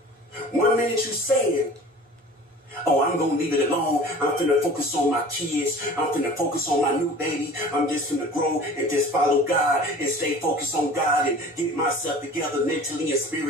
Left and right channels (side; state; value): both; normal; correlation 0.42